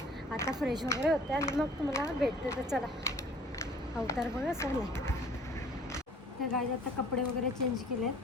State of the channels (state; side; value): normal; both; correlation 0.52